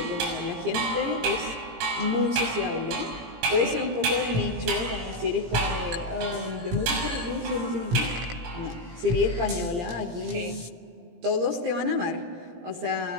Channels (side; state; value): left; late; 17 ms